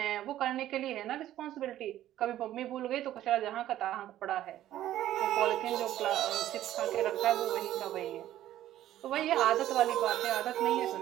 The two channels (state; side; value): quieter; left; 13.1 dB